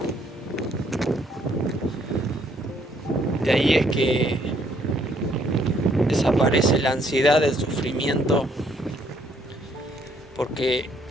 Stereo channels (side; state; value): both; normal; correlation 0.67